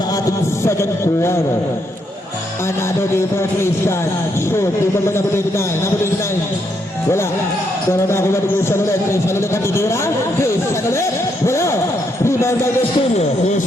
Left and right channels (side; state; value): both; normal; correlation 0.77